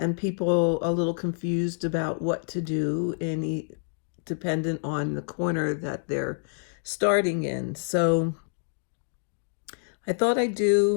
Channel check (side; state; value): right; silent; digital silence